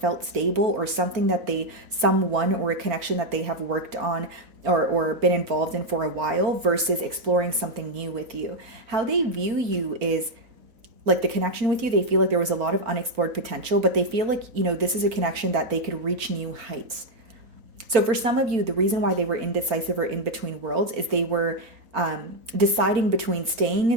stable, or something that someone or a connection that they have worked on or been involved in for a while, versus exploring something new with you. How they view you is like the connection with you, they feel like there was a lot of unexplored potential, but they feel like, this is a connection that they could reach new heights. So for some of you, the reason why they were indecisive or in between worlds is they were deciding between staying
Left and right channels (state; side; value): late; left; 4.4 ms